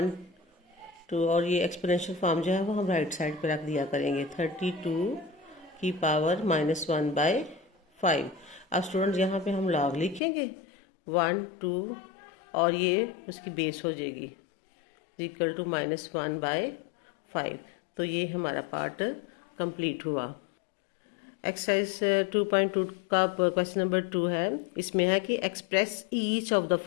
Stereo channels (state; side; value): drops out; right; at 10.2 s